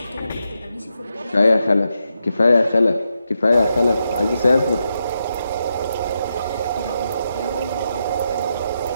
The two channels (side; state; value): both; inverted; correlation -0.85